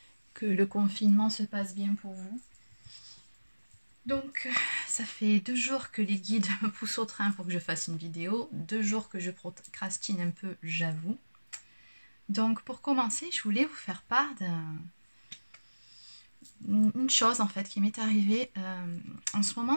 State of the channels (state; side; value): inverted; both; correlation -1.00